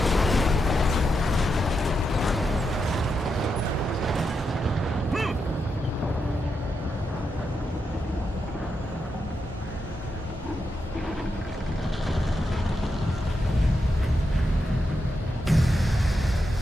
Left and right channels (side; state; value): both; normal; correlation 0.85